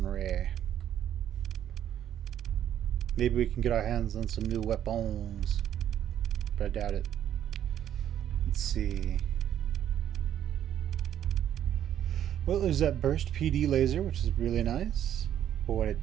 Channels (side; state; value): left; quieter; 10.5 dB